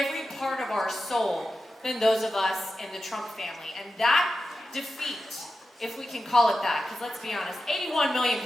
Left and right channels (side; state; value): both; normal; correlation 0.91